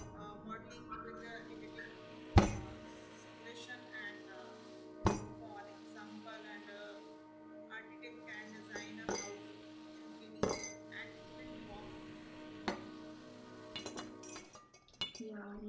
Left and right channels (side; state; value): both; identical; correlation 1.00